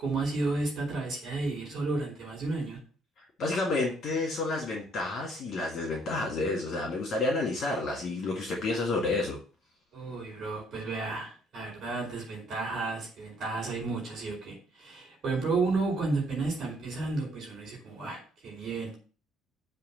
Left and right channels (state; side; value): normal; both; correlation 0.65